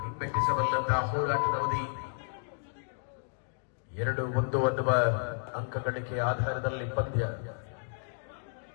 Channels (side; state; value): right; silent; digital silence